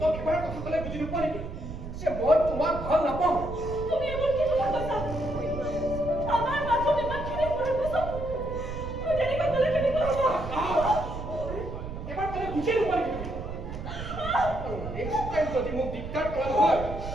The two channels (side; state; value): right; noise; rumble, 8 dB below the sound